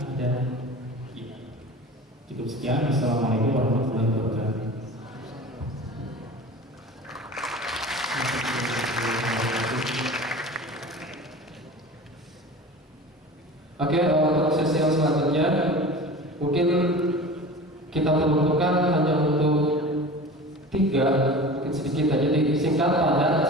ada cukup sekian. Assalamualaikum warahmatullahi wabarakatuh. Oke, untuk sesi yang selanjutnya mungkin kita peruntukkan hanya untuk 3, mungkin sedikit aja, jadi singkat padat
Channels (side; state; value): both; normal; correlation 0.37